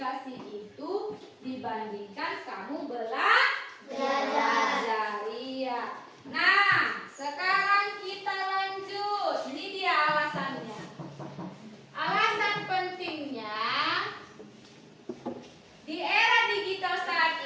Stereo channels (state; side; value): identical; both; correlation 1.00